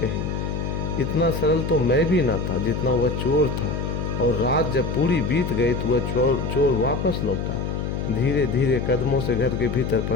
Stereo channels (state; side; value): noise; left; hum, 3 dB below the sound